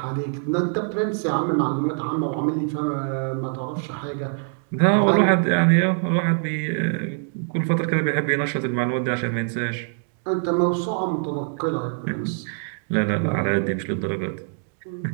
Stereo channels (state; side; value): silent; left; 63 dB below the other